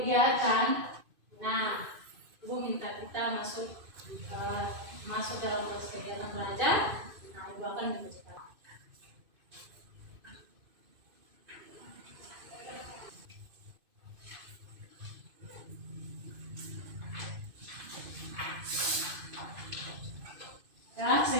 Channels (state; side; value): late; left; 2.5 ms